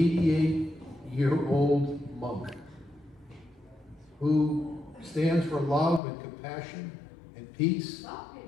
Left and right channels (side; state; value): right; drops out; at 6.0 s